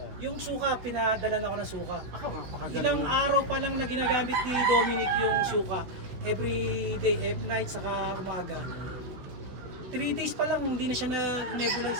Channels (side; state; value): left; late; 16 ms